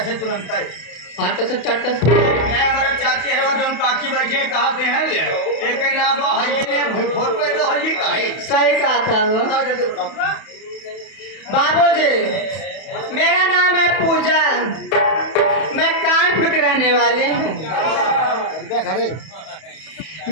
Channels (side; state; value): right; late; 31 ms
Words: से तुरंत है। फट से चट से नहीं हमारा चाची है वो जो काकी बैठे कहा से हैं एक नाम है फोटो इधर हो जी काहे सही कहा था वो। बताओ जल्दी बताओ। बाबूजी मेरा नाम है पूजा, मैं कानपुर के रहने वाले हूँ।